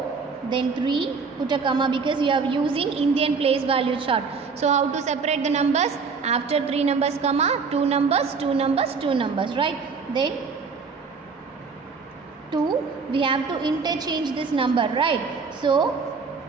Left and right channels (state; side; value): quieter; left; 5.1 dB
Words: Then 3, put a comma because we are using Indian place value chart. So how to separate the numbers? After 3 numbers, comma, 2 numbers, 2 numbers, 2 numbers, right? Then 2, we have to interchange this number, right? So